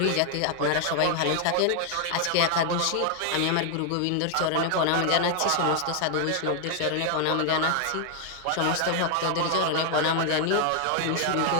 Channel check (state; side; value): different; both; correlation 0.00